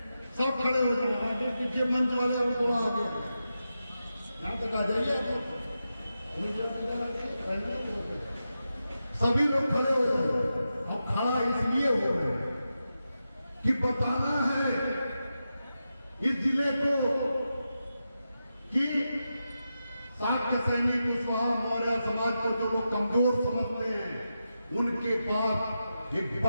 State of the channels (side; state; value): both; inverted; correlation -0.89